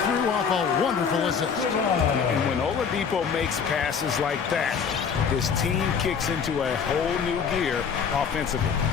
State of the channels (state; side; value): quieter; right; 6.5 dB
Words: through off a wonderful assist. And when Oladipo makes passes like that, his team kicks into a whole new gear offensively.